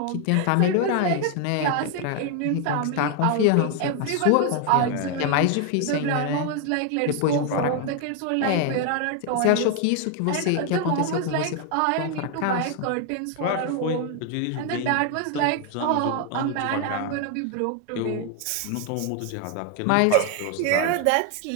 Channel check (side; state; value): both; different; correlation 0.01